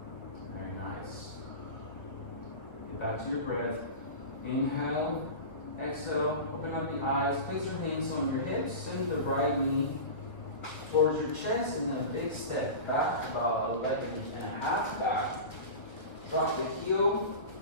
Very nice. Get back to your breath. Inhale, exhale, open up the eyes, place your hands on your hips, send the right knee towards your chest, and then a big step back, about 11.5 back. Drop the heel.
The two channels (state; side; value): late; right; 1.5 ms